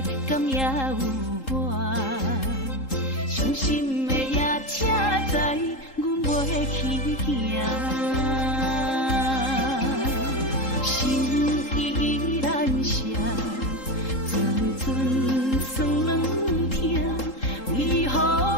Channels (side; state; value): right; late; 3.8 ms